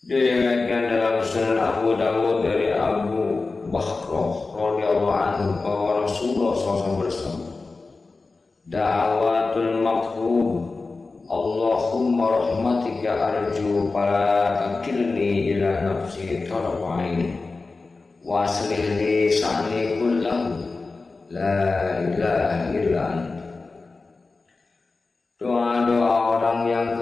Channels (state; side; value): quieter; right; 3.8 dB